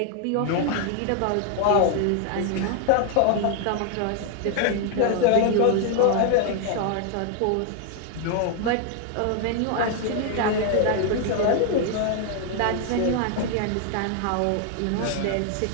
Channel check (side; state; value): both; different; correlation 0.00